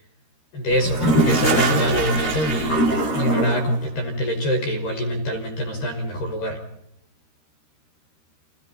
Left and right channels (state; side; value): late; right; 13 ms